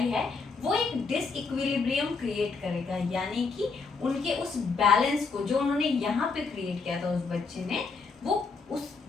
है, वो एक डिसइक्विलिब्रियम क्रिएट करेगा, यानी कि उनके उस बैलेंस को जो उन्होंने यहाँ पे क्रिएट किया था उस बच्चे ने, वो उस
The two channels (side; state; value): right; quieter; 4.6 dB